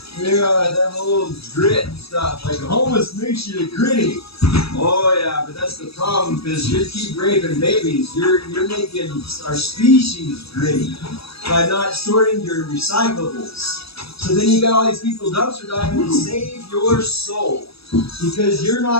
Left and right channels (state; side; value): late; right; 0.77 ms